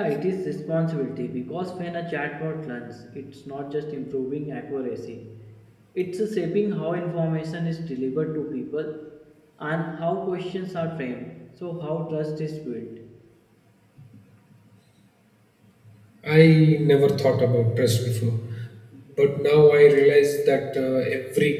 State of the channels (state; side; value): identical; both; correlation 1.00